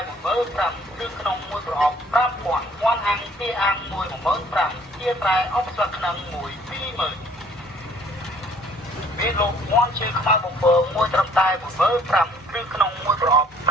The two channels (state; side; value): normal; both; correlation 0.57